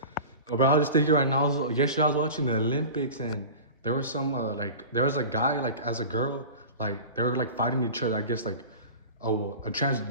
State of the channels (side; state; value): both; inverted; correlation -0.34